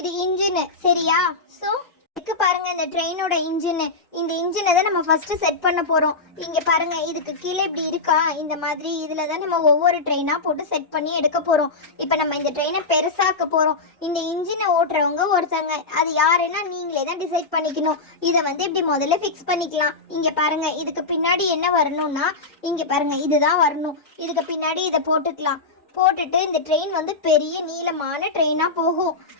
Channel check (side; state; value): right; quieter; 3.8 dB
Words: இது இன்ஜின், சரியா? சோ இதுக்கு பாருங்க, இந்த ட்ரெயினோட இன்ஜின். இந்த இன்ஜினை தான் நம்ம ஃபர்ஸ்ட் செட் பண்ண போறோம். இங்க பாருங்க, இதுக்கு கீழே இப்படி இருக்கா, இந்த மாதிரி இதுல தான் நம்ம ஒவ்வொரு ட்ரெயினா போட்டு செட் பண்ணி எடுக்க போறோம். இப்ப நம்ம இந்த ட்ரெயினை பெருசாக்க போறோம். இந்த இன்ஜினை ஓட்டுறவங்க ஒருத்தங்க, அது யாருன்னா நீங்களே தான் டிசைட் பண்ணிக்கணும். இதை வந்து இப்படி முதல்ல ஃபிக்ஸ் பண்ணிக்கலாம். இங்க பாருங்க, இதுக்கு பின்னாடி என்ன வரணும்னா, இங்க பாருங்க இதுதான் வரணும். இதுக்கு பின்னாடி இதை போட்டுக்கலாம். போட்டுட்டு இந்த ட்ரெயின் வந்து பெரிய நீளமான ட்ரெயினா போகும்.